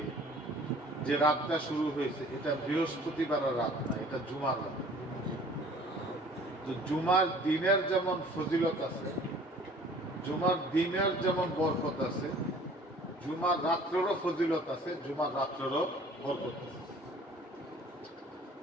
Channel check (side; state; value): both; normal; correlation 0.51